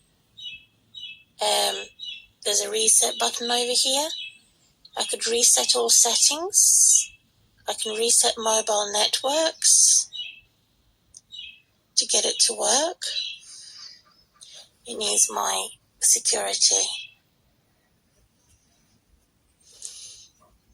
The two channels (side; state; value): both; identical; correlation 1.00